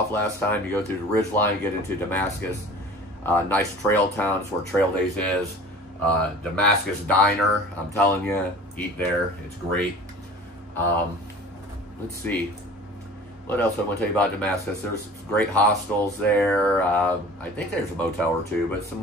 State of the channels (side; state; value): both; normal; correlation 0.43